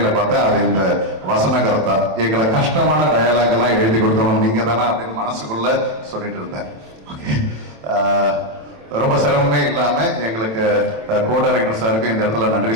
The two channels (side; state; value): left; late; 27 ms